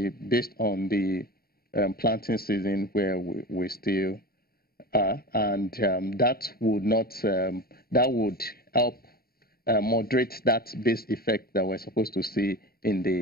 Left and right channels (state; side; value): late; right; 0.44 ms